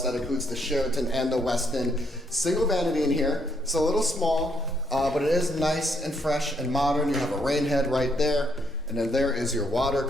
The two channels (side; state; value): both; normal; correlation 0.73